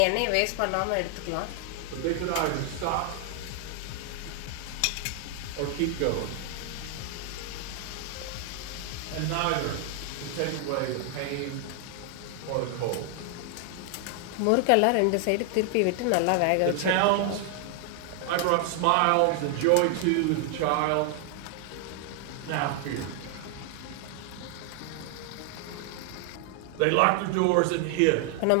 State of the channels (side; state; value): both; different; correlation 0.00